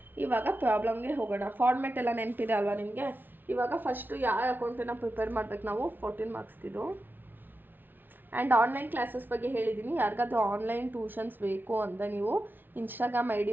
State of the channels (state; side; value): late; left; 0.093 ms